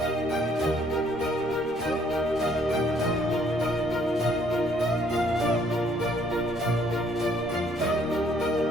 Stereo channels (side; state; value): both; normal; correlation 0.64